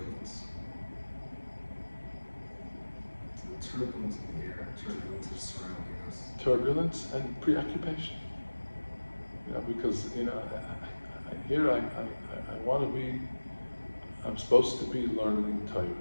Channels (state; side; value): inverted; both; correlation -1.00